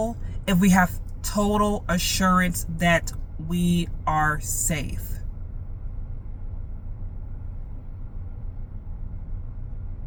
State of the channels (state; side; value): identical; both; correlation 1.00